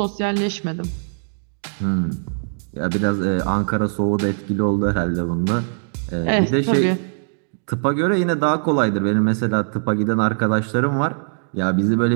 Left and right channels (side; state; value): left; silent; digital silence